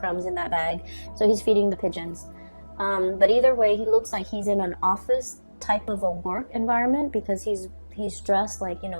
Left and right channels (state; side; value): inverted; both; correlation -1.00